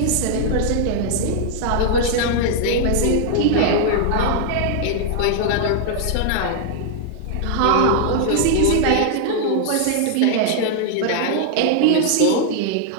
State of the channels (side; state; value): both; different; correlation 0.00